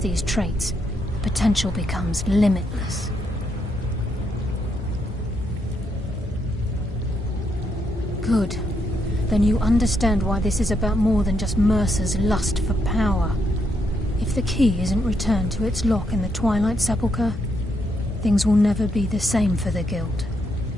traits, the potential becomes limitless. Good. Then you understand why this is about more than just Mercer's lust for power. If the key isn't returned to its lock in the Twilight Sepulchre, things will never be the same for the Guild.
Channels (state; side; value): normal; both; correlation 0.78